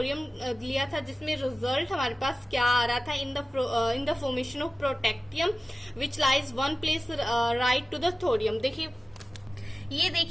लिया था, जिसमें रिजल्ट हमारे पास क्या आ रहा था, in the formation of protactinium which lies 1 place right to the thorium. देखिए ये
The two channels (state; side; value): normal; both; correlation 0.96